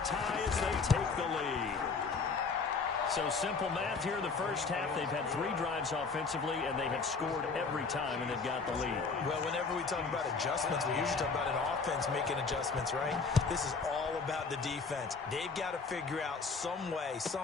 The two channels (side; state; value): right; quieter; 4.6 dB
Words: tie as they take the lead. So simple math here in the first half. They've had 3 drives offensively, and they have scored every time, and they've got the lead. Well, whenever we talk about adjustments, we usually talk about an offense making adjustments, right? This is all about the defense. They've got to figure out some way,